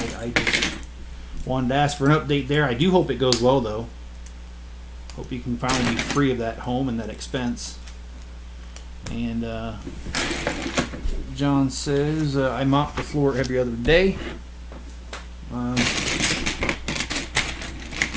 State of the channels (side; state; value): both; identical; correlation 1.00